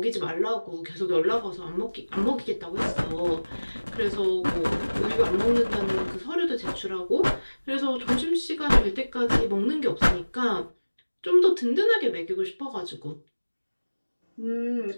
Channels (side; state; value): both; inverted; correlation -1.00